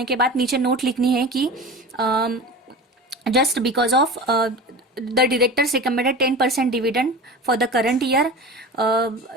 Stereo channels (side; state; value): both; normal; correlation 0.32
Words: के बाद नीचे नोट लिखनी है कि just because of the directors recommended 10% dividend for the current year